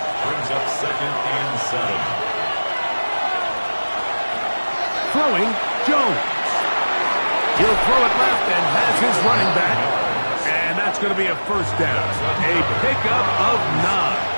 Brings up second and 7. Throwing, Jones. He'll throw it left and has his running back. And that's going to be a first down. A pickup of 9.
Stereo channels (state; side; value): inverted; both; correlation -1.00